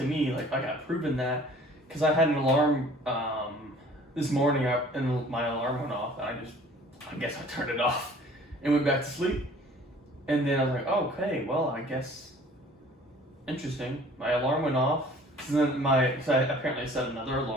me, like I got proven that, because I had an alarm this morning, and my alarm went off, and I guess I turned it off and went back to sleep. And then I was like, oh, okay, well, I guess, interesting. My alarm went off, so then so I apparently set another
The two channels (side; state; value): both; normal; correlation 0.51